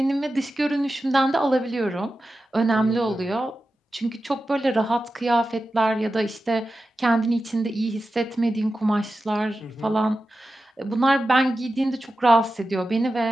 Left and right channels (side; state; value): both; normal; correlation 0.92